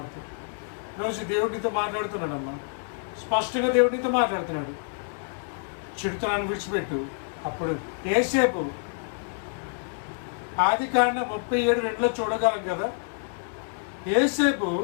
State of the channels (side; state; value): right; silent; 60 dB below the other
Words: ఈరోజు దేవుడితో మాట్లాడుతున్నాడమ్మా, స్పష్టంగా దేవుడితో మాట్లాడుతున్నాడు. చెడుతనాన్ని విడిచిపెట్టు. అప్పుడు యేసేపు ఆదికాండం 37:2 చూడగలం కదా. యేసేపు